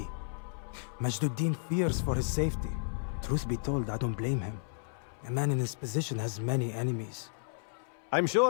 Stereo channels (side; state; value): right; silent; 56 dB below the other